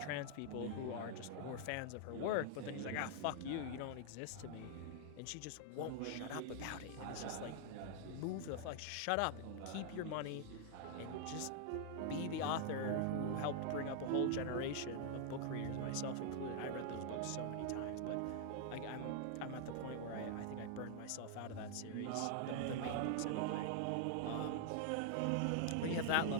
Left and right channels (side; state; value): both; different; correlation -0.01